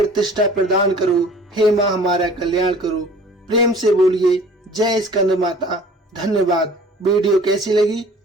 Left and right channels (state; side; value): normal; both; correlation 0.48